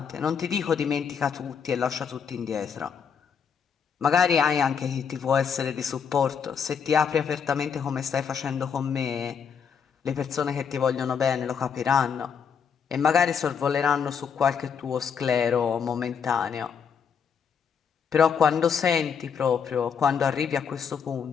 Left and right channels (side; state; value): right; quieter; 6.9 dB